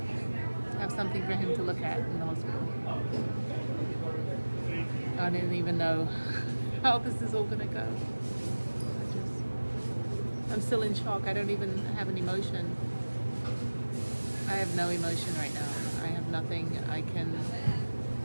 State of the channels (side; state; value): both; inverted; correlation -1.00